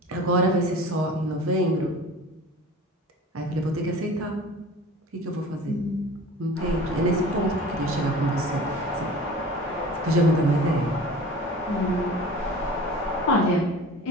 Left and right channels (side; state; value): both; normal; correlation 0.40